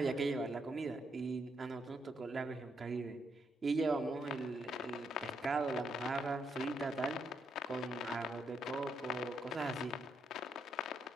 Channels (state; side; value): normal; both; correlation 0.78